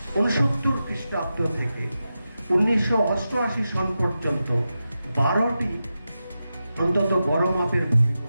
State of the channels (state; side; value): inverted; both; correlation -0.91